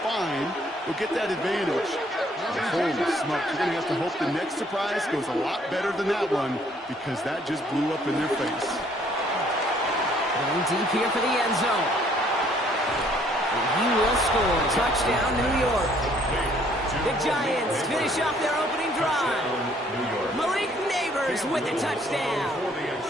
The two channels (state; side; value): normal; both; correlation 0.63